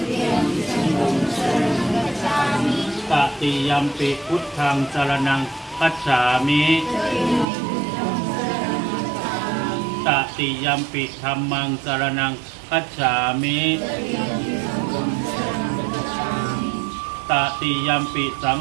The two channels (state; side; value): drops out; left; at 7.5 s